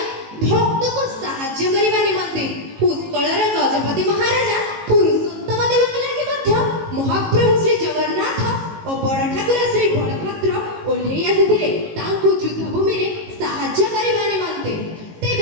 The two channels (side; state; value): left; late; 18 ms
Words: ଭକ୍ତକୁ ସାହାଯ୍ୟ କରିବା ନିମନ୍ତେ। ଉତ୍କଳର ଗଜପତି ମହାରାଜା ପୁରୁଷୋତ୍ତମ ଦେବଙ୍କ ଲାଗି ମଧ୍ୟ ମହାପ୍ରଭୁ ଶ୍ରୀ ଜଗନ୍ନାଥ ଓ ବଡ଼ ଠାକୁର ଶ୍ରୀ ବଳଭଦ୍ର ଓହ୍ଲେଇ ଆସିଥିଲେ ତାଙ୍କୁ ଯୁଦ୍ଧଭୂମିରେ ସାହାଯ୍ୟ କରିବା ନିମନ୍ତେ।